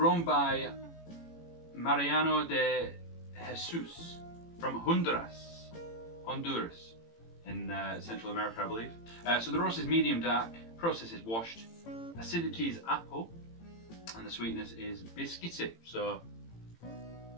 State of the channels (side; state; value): right; late; 18 ms